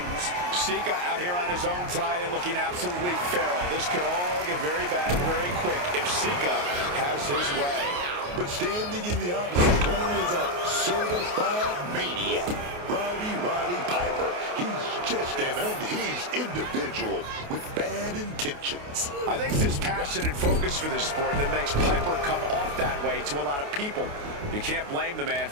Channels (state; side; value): late; left; 28 ms